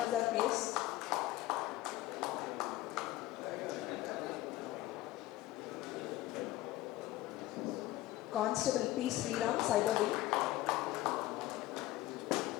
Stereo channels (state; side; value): quieter; right; 16.1 dB